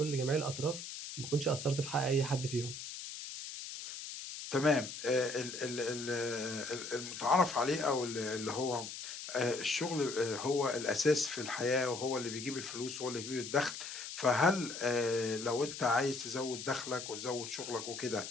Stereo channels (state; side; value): noise; left; hiss, 8 dB below the sound